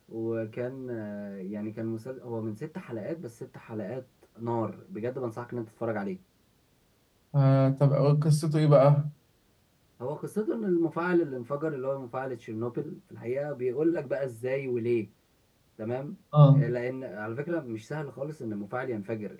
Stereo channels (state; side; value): identical; both; correlation 1.00